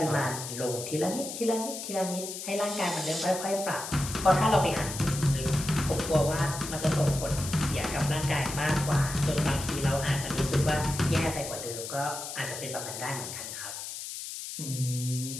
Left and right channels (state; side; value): noise; left; hiss, 8 dB below the sound